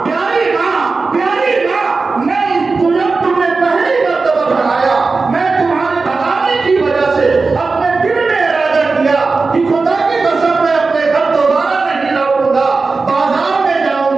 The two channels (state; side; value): quieter; left; 4.1 dB